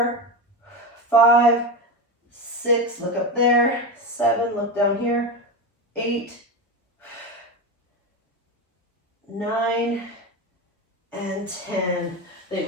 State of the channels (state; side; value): normal; both; correlation 0.18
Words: 5, 6, look up there. 7, look down here. 8, 9, and 10. I think